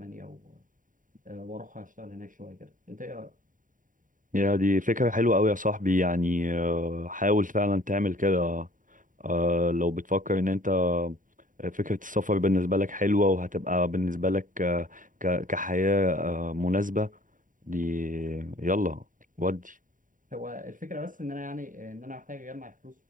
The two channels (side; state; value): left; late; 0.39 ms